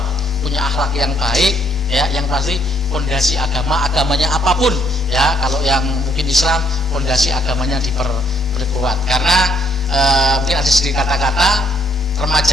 punya akhlak yang baik, ya, yang pasti fondasi agamanya apapun, ya. Kalau yang mungkin Islam, fondasi agamanya diperkuat. Karena mungkin ada sedikit kata-kata,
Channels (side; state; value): both; normal; correlation 0.68